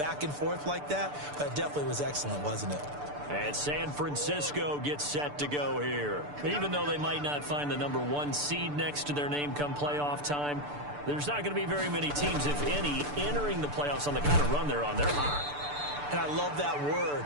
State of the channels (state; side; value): late; left; 6.8 ms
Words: and forth like that? But it definitely was excellent, wasn't it? And San Francisco gets set to go here. Even though they might not find the number 1 seed next to their name come playoff time, there's not going to be very many teams, if any, entering the playoffs on the kind of run they're on. They're hot. And I love that word,